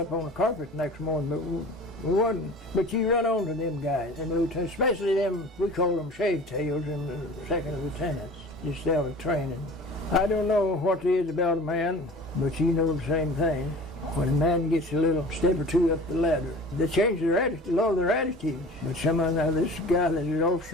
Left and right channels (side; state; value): both; normal; correlation 0.42